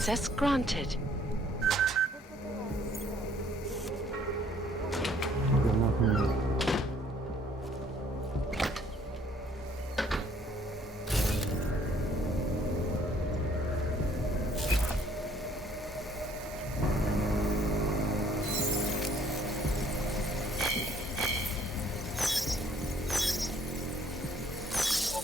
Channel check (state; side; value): normal; both; correlation 0.61